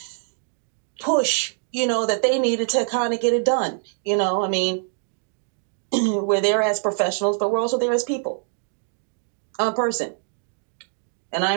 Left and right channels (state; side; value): silent; left; 63 dB below the other